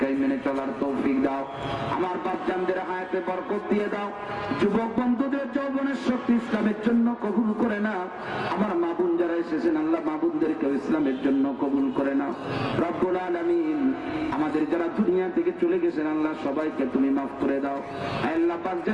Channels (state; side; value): identical; both; correlation 1.00